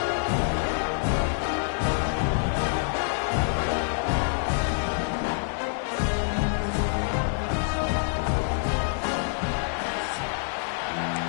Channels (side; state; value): right; silent; 60 dB below the other